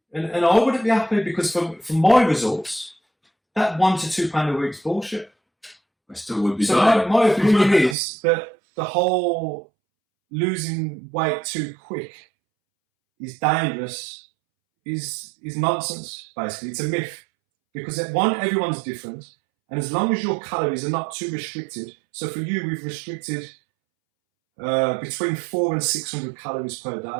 and I wouldn't be happy, because for my results, that £1 to £2 a week's bullshit. I still would be. So my opinion is that the whole losing weight too quick is dangerous, is nonsense, basically. It's a myth. Because everyone's different, and as long as your calories are not too restricted, so for you, we've restricted between 400 and 600 calories per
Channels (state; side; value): drops out; left; at 8.0 s